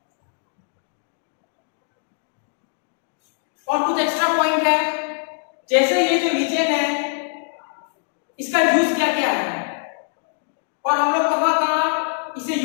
और कुछ एक्स्ट्रा पॉइंट है, जैसे ये जो लिचेन है इसका यूज क्या क्या है और हम लोग कहां कहां इसे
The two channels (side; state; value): right; silent; digital silence